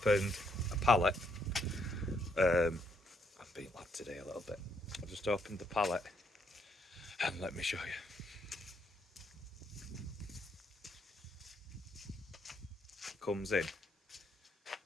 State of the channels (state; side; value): normal; both; correlation 0.73